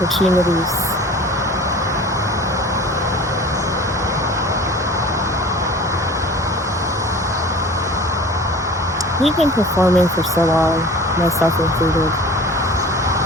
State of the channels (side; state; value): both; normal; correlation 0.42